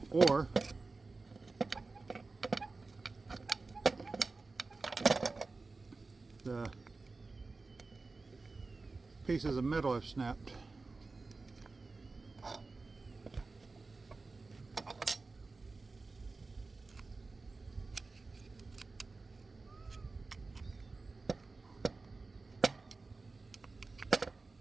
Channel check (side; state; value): left; quieter; 3.8 dB